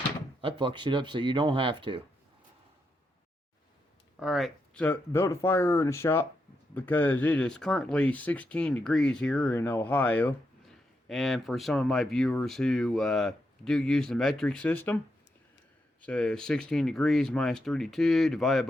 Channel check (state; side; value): normal; both; correlation 0.83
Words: I fuck shit up so you don't have to. Alright, so built a fire in the shop because it is currently 16 degrees here in Ohio. And for some of my viewers who do use the metric system, so 16 degrees minus 32 divided